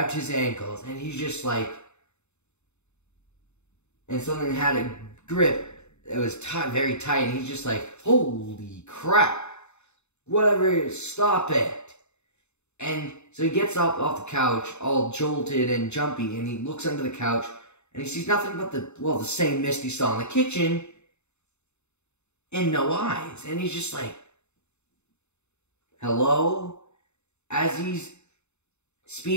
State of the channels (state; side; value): late; right; 0.82 ms